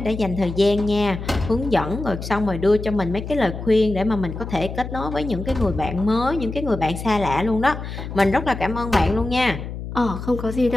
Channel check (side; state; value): left; noise; hum, 8 dB below the sound